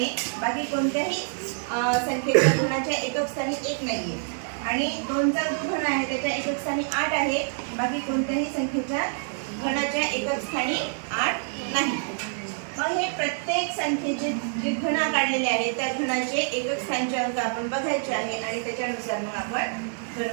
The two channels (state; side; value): silent; left; 55 dB below the other